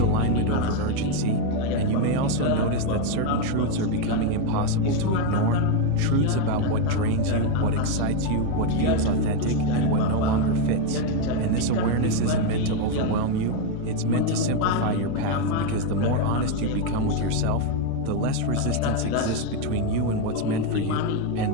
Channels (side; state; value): both; different; correlation 0.02